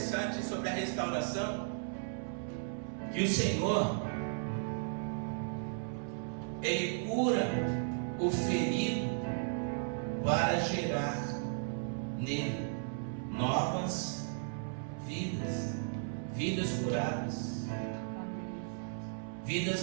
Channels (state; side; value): silent; left; 54 dB below the other